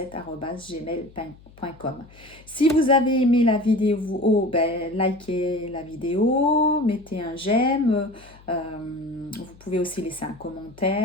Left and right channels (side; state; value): left; noise; hum, 24 dB below the sound